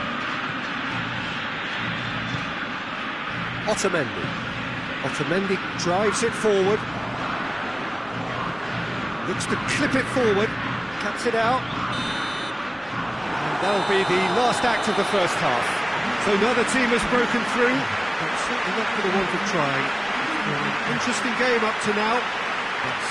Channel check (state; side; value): noise; right; rumble, 26 dB below the sound